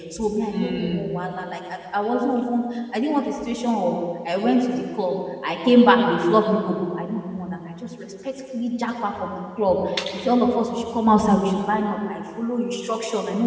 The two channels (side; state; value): both; identical; correlation 1.00